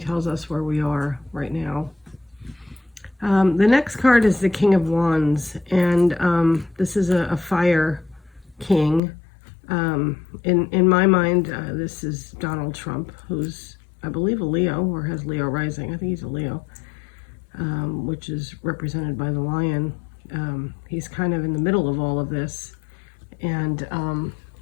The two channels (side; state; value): right; drops out; at 9.0 s